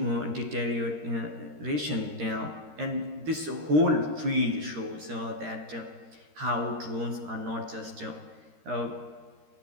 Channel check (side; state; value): left; late; 13 ms